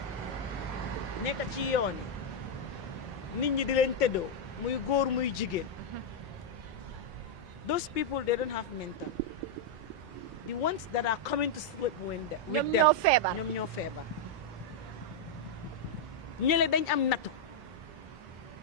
nekk ci yooni nit ñi di leen tëddoo muy góor muy jigéen those people they don't have mental the ones that are coming to sleep with them ñoom ñoo feebar ñële dañ am nattu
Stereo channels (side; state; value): both; normal; correlation -0.02